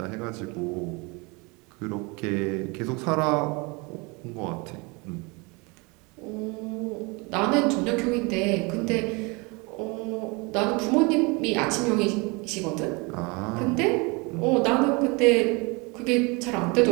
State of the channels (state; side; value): quieter; left; 28.0 dB